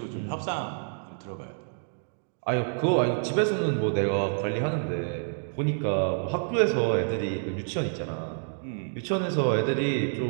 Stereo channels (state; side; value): silent; left; digital silence